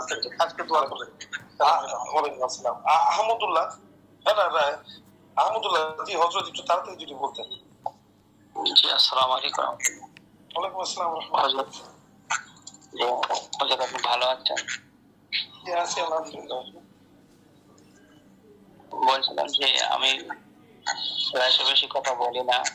করতে আজকে দোয়া করবেন। ওয়ালাইকুম আসসালাম। আহমদুল্লাহ, আহমদুল্লাহ জি হযরত, একটু তাড়াতাড়ি যদি বলতেন। জি, আসসালামু আলাইকুম। ওয়ালাইকুম আসসালাম ওয়া রাহমাতুল্লাহ। যে আপনি ভালো আছেন? আছি আলহামদুলিল্লাহ। বলছিলাম যে আমি প্রায় বেশি কথা বলি না,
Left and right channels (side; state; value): both; identical; correlation 1.00